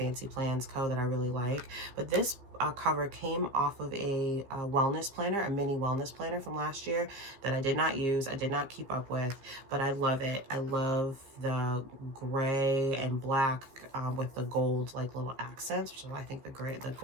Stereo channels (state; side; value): late; left; 15 ms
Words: Plans Co. that I really like, but this cover came off of a wellness planner, a mini wellness planner from last year that I did not use, I did not keep up with, but I love it. I love the gray and black with the gold like little accents, which is why I think the